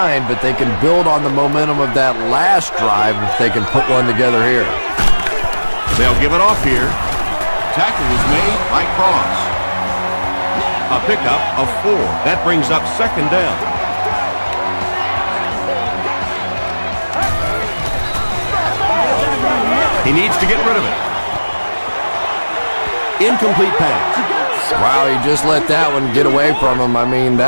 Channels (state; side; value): inverted; both; correlation -1.00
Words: but they can build on the momentum of that last drive if they can put one together here. They'll give it off here. Tackle was made by Cross. A pickup of 4. That brings up 2nd down. He needs to get rid of it. Incomplete pass. Wow, he just let that one get away from him. I mean,